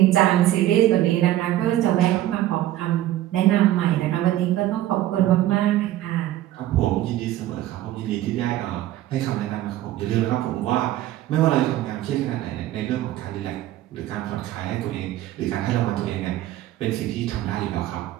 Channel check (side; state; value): left; quieter; 14.1 dB